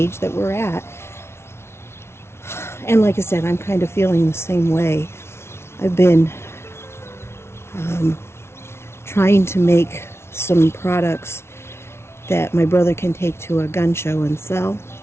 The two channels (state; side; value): late; right; 0.12 ms